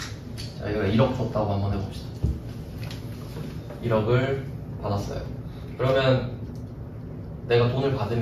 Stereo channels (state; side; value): identical; both; correlation 1.00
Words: 자, 이거 1억 줬다고 한번 해봅시다. 1억을 받았어요. 그러면 내가 돈을